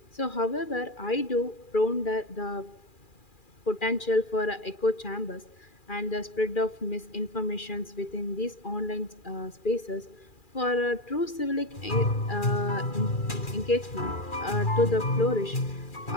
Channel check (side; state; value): right; late; 2.4 ms